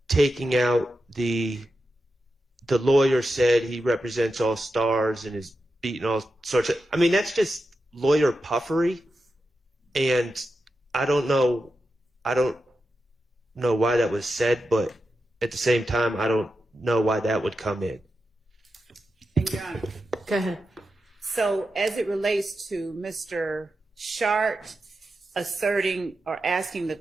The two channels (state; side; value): normal; both; correlation 0.89